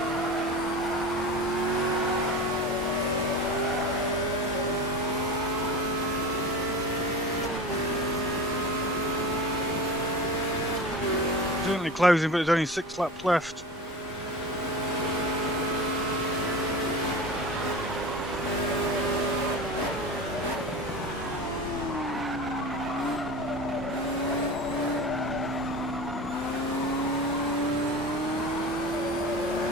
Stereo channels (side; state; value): both; normal; correlation 0.32